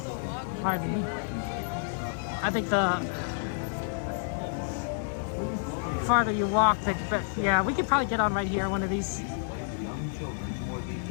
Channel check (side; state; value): right; silent; digital silence